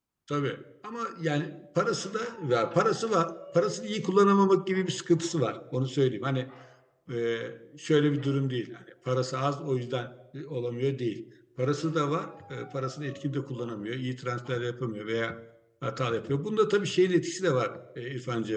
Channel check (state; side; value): identical; both; correlation 1.00